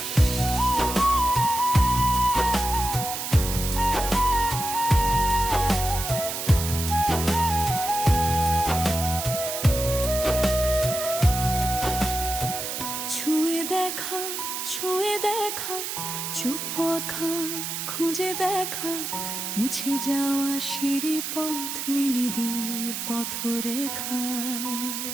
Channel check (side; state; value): right; noise; hiss, 4 dB below the sound